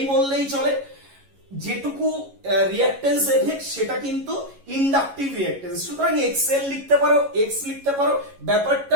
বললেই চলে। যেটুকু রিঅ্যাকট্যান্স এফেক্ট সেটা কিন্তু ইন্ডাকটিভ রিঅ্যাকট্যান্স, সুতরাং এক্সএল লিখতে পারো, এক্স লিখতে পারো,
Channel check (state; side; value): late; left; 11 ms